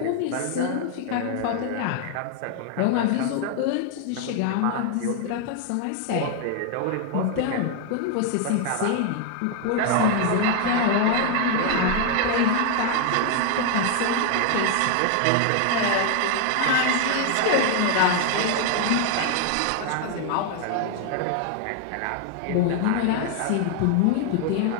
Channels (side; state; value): both; different; correlation 0.00